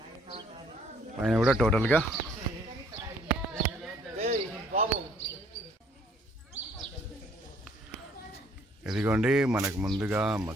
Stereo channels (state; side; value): normal; both; correlation 0.62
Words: పైన కూడా టోటల్గా ఇదిగోండి. మనకు ముందుగా